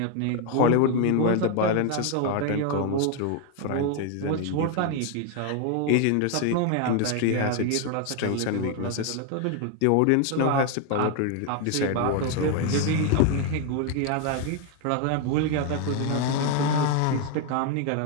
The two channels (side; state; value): both; different; correlation 0.01